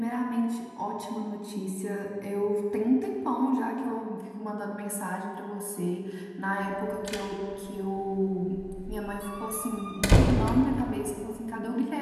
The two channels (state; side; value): identical; both; correlation 1.00